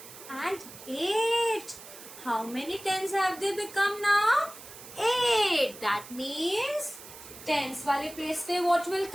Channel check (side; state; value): right; noise; hiss, 16 dB below the sound